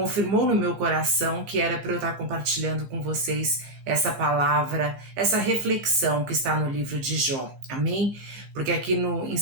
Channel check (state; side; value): late; left; 15 ms